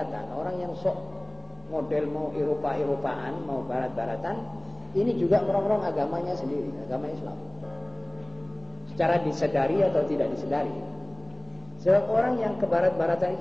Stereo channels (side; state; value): left; noise; hum, 25 dB below the sound